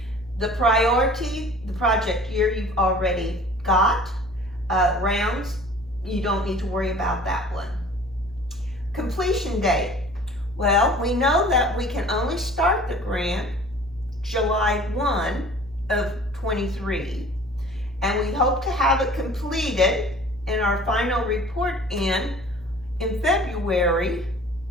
The priority, the project year you've already got. Rounds, you don't need to worry about that one. Completion date. Well, we know that we can only start the grant July 1 of 23. And we hope to have it completed in our final report in February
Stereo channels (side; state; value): both; normal; correlation 0.47